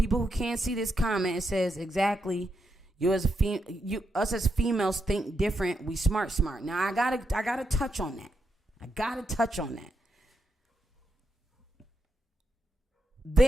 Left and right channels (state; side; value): normal; both; correlation 0.83